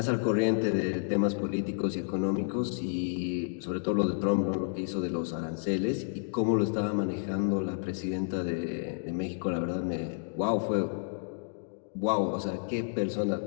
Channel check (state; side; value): silent; right; digital silence